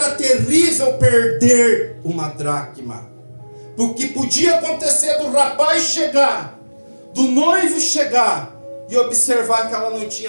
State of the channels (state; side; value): inverted; both; correlation -1.00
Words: terrível perder uma dracma. Porque podia acontecer do rapaz chegar, do noivo chegar, e observar que ela não